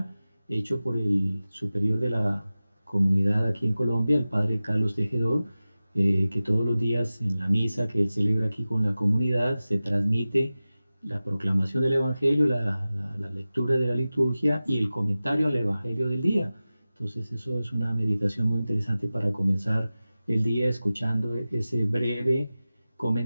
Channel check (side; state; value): both; inverted; correlation -0.96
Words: hecho por el superior de la comunidad aquí en Colombia, el padre Carlos Tejedor, que todos los días en la misa que él celebra aquí con la comunidad se transmite la proclamación del Evangelio, la lectura de la liturgia y el comentario al Evangelio del día. Entonces eso es una meditación muy interesante para comenzar el día escuchando ese breve